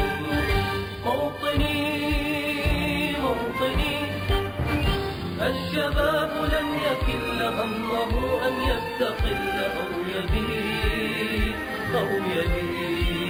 موطني موطني، الشباب لن يكل همه أن يستقل أو يبيد أو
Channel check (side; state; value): both; identical; correlation 1.00